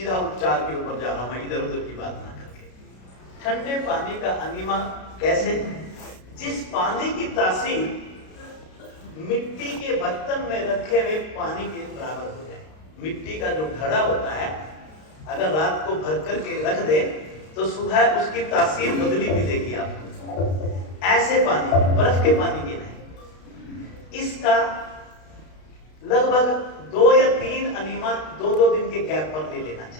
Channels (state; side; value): late; right; 32 ms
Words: उपचार के ऊपर जा रहा हूं मैं, इधर उधर की बात ना करके। ठंडे पानी का अनीमा कैसे? जिस पानी की तासीर मिट्टी के बर्तन में रखे हुए पानी के बराबर हो जाए। मिट्टी का जो घड़ा होता है, अगर रात को भर करके रख दे तो सुबह उसकी तासीर बदली मिलेगी आपको। ऐसे पानी, बर्फ के पानी के नहीं। इसका लगभग 2 या 3 अनीमा 2-2 दिन के गैप पर ले लेना